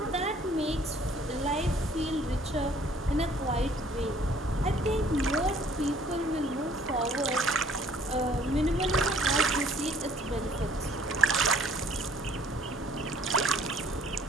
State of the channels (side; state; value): both; normal; correlation 0.58